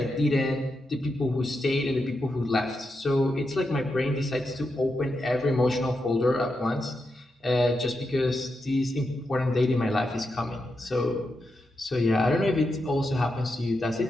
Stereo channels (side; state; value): both; normal; correlation 0.86